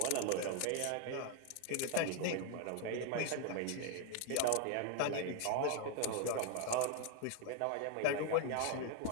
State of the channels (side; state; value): both; different; correlation 0.01